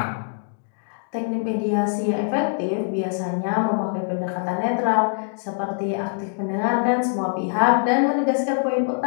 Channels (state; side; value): silent; right; digital silence